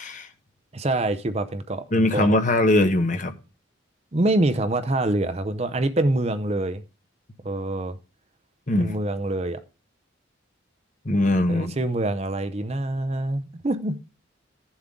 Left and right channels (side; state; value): both; normal; correlation 0.61